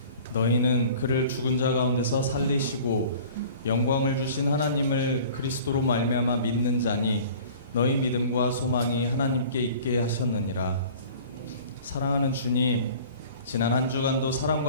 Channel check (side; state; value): both; inverted; correlation -0.45